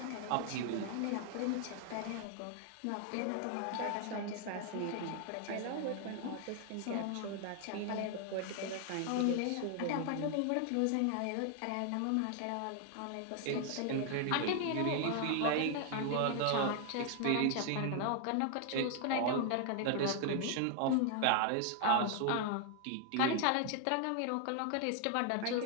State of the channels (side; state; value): both; different; correlation 0.00